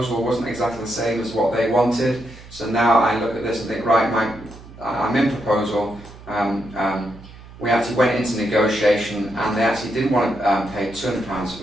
wasn't exactly the same as what they wanted. So now I look at this and think, right, I'm in proposal. We actually went into negotiation and they actually didn't want to pay £200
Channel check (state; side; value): noise; right; hum, 19 dB below the sound